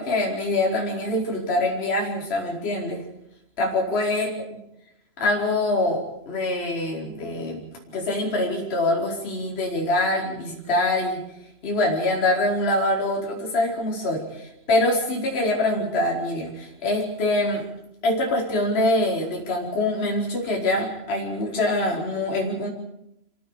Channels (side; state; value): right; late; 3.0 ms